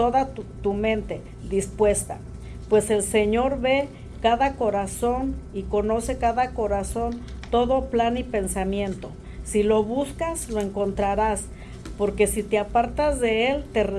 tu mente dispuesta, pues el Señor ve cada corazón y conoce cada corazón, todo plan y pensamiento. Si lo buscas, lo encontrarás, porque si te apartas de él, te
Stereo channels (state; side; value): identical; both; correlation 1.00